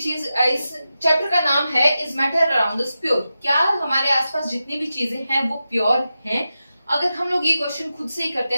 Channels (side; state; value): both; inverted; correlation -0.91